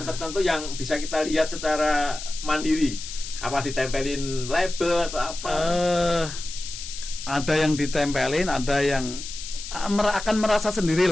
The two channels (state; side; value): noise; left; hiss, 10 dB below the sound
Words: tertentu yang bisa kita lihat secara mandiri. Apa ditempelin label atau apa? Ada yang ditempelin, ada yang akan merasa